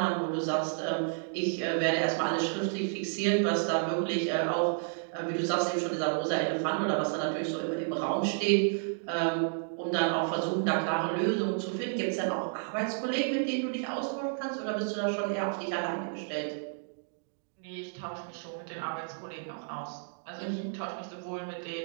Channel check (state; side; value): silent; left; digital silence